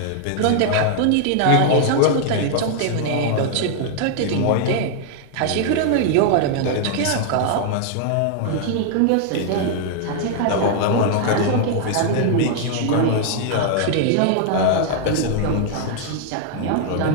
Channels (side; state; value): both; different; correlation 0.00